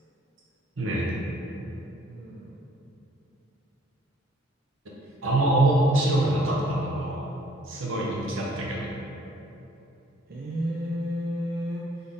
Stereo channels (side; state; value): both; normal; correlation 0.60